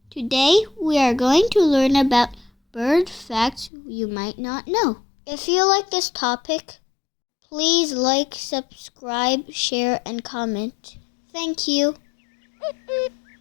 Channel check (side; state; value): right; drops out; at 3.7 s